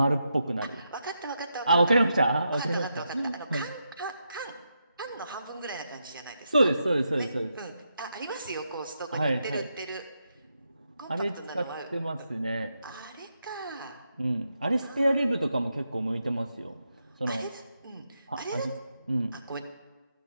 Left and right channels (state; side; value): inverted; both; correlation -0.84